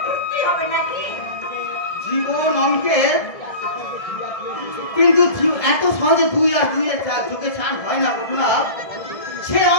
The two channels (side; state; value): right; late; 1.7 ms